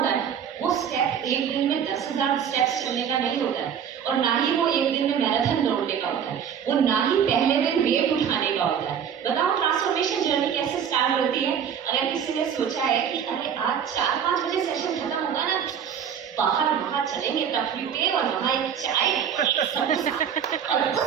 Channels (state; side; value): quieter; left; 8.1 dB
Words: है? वो स्टेप एक दिन में 10,000 स्टेप्स चलने का नहीं होता है, और ना ही वो एक दिन में मैराथन दौड़ने का होता है, वो ना ही पहले दिन वेट उठाने का होता है। बताओ ट्रांसफॉर्मेशन जर्नी कैसे स्टार्ट होती है? अगर किसी ने सोचा है कि अरे आज 4-5 बजे सेशन खत्म होगा ना, बाहर वहां चलेंगे टफली पे और वहां एक चाय और